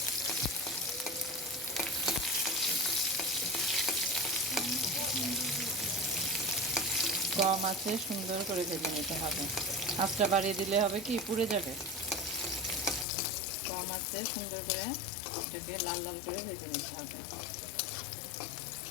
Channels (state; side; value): drops out; right; at 13.1 s